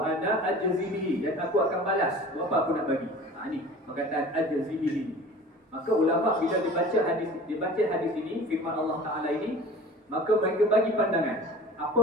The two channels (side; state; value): both; normal; correlation 0.42